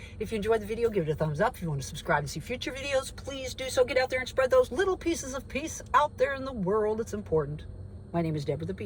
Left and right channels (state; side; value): identical; both; correlation 1.00